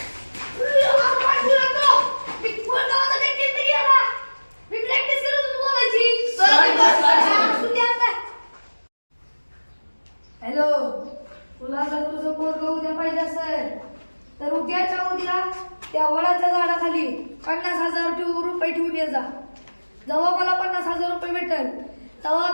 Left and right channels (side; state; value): both; inverted; correlation -1.00